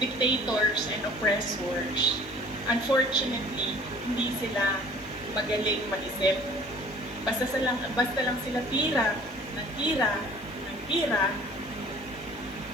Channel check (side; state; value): both; normal; correlation 0.50